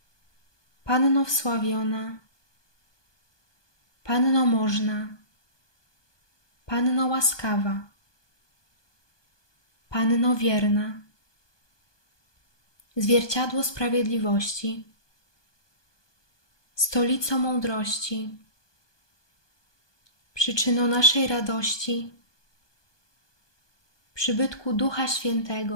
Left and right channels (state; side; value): late; right; 1.2 ms